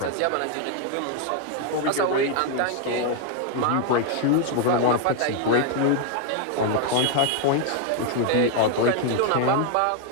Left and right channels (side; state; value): both; different; correlation 0.00